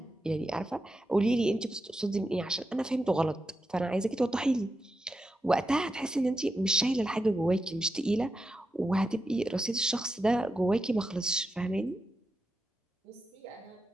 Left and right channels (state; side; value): normal; both; correlation 0.88